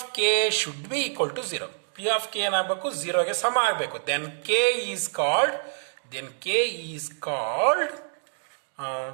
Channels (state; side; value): silent; left; digital silence